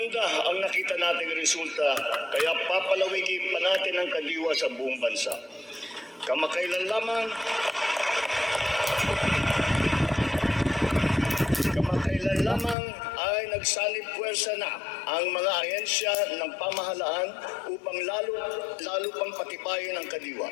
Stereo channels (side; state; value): right; drops out; at 12.8 s